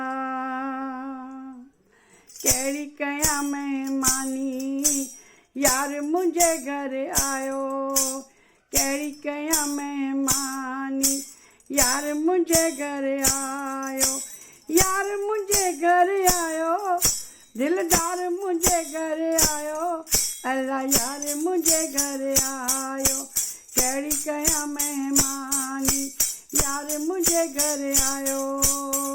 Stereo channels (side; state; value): both; identical; correlation 1.00